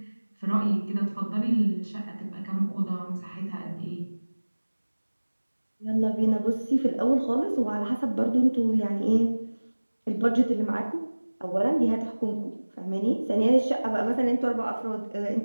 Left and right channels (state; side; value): inverted; both; correlation -1.00